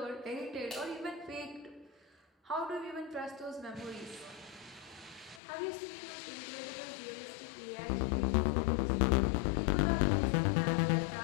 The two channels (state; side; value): drops out; right; at 5.4 s